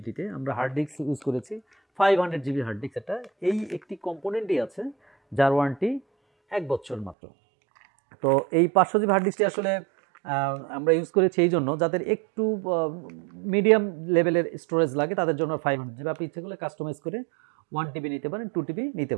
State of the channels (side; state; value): left; drops out; at 7.2 s